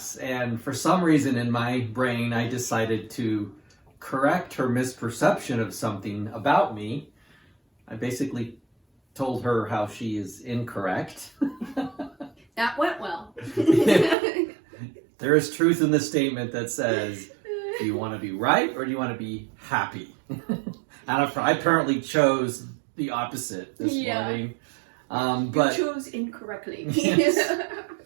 and for some reason in my brain, I decided to correct her misperception of something about me. I basically told her how she is incorrect. That went well. There is truth in the statement that says, do you want to be right or do you want to be happy? And I apparently chose the opposite this morning. But you chose incorrectly. Yes.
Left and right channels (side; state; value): left; drops out; at 14.2 s